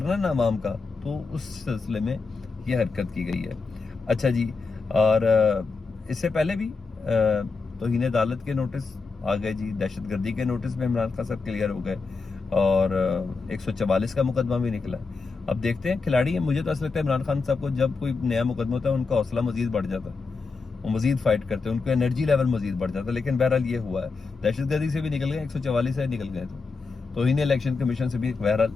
نا عوام کا، تو اس سلسلے میں یہ حرکت کی گئی ہے. اچھا جی، اور اس سے پہلے بھی توہین عدالت کے نوٹس آ گئے جی، دہشت گردی کے نوٹس میں عمران خان صاحب کلیئر ہو گئے اور 144 کا مقدمہ بھی نکلا. اب دیکھتے ہیں، کھلاڑی ہیں. مجھے تو ایسا لگتا ہے عمران خان صاحب کو جب کوئی نیا مقدمہ ہوتا ہے ان کا حوصلہ مزید بڑھ جاتا ہے، وہ مزید فائٹ کرتے ہیں، ان کا انرجی لیول مزید بڑھ جاتا ہے. لیکن بہرحال یہ ہوا ہے، دہشت گردی سے بھی نکل گئے، 144 سے نکل گئے، تو انہیں الیکشن کمیشن سے بھی بہرحال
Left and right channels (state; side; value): quieter; right; 4.3 dB